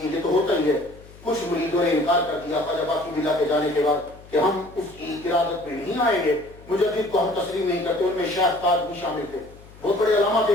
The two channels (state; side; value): noise; left; hum, 21 dB below the sound